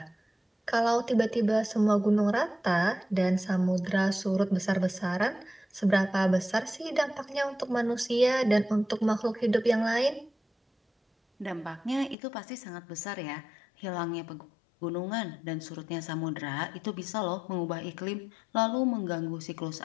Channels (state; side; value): drops out; right; at 12.2 s